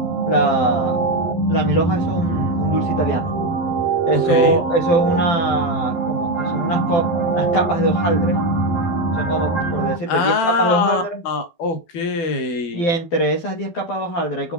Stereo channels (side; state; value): right; late; 12 ms